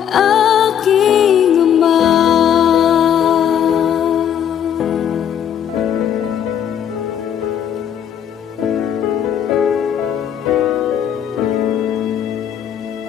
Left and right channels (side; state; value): right; quieter; 9.1 dB